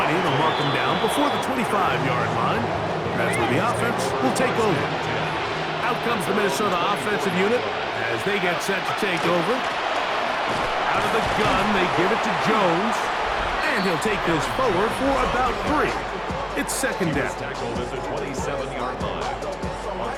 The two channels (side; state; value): both; identical; correlation 1.00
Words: they'll mark him down before the 25-yard line. That's where the offense will take over. Out comes the Minnesota offensive unit as they get set to take over. Out of the gun, they give it to Jones. And he'll take this forward for about 3. It's 2nd down. Tackled at the 27-yard line. A